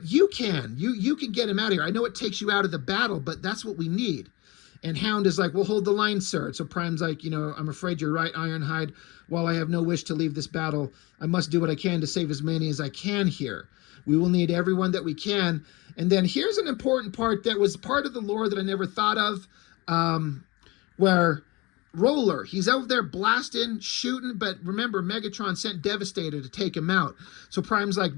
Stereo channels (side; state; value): right; quieter; 23.9 dB